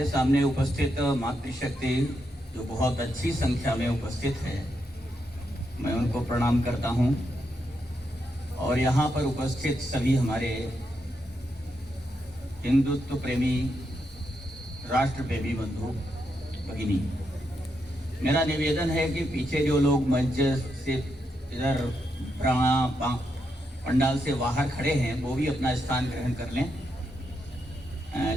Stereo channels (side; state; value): both; normal; correlation 0.82